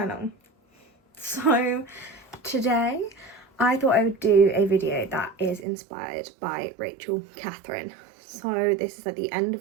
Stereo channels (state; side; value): drops out; left; at 5.7 s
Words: So today I thought I would do a video that is inspired by Rachel Catherine. So this is at the end